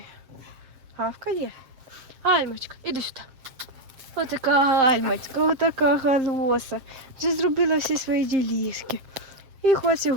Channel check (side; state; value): left; late; 7.6 ms